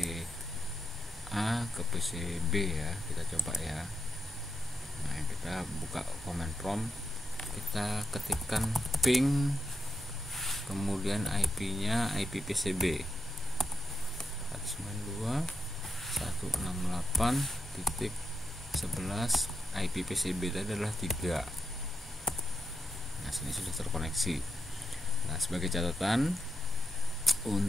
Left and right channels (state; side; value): normal; both; correlation 0.85